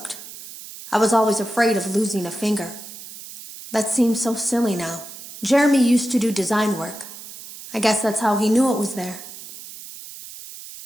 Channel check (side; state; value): right; noise; hiss, 14 dB below the sound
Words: I was always afraid of losing a finger. That seems so silly now. Jeremy used to do design work. I guess that's how he knew it was there.